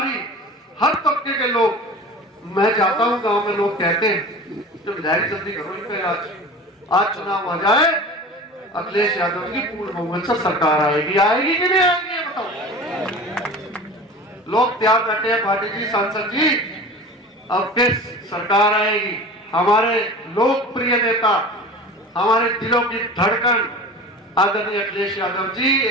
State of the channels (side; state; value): both; normal; correlation 0.36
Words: हर तबके के लोग, मैं जाता हूं गांव में, लोग कहते हैं तो विधायक जल्दी करो इन पे, आज चुनाव आ जाए, अखिलेश यादव की पूर्ण बहुमत से सरकार आएगी। आएगी कि नहीं आएगी ये बताओ। लोग तैयार बैठे हैं, भाटी जी, सांसद जी, अब किस सरकार आएगी। हमारे लोकप्रिय नेता, हमारे दिलों की धड़कन आदरणीय अखिलेश यादव जी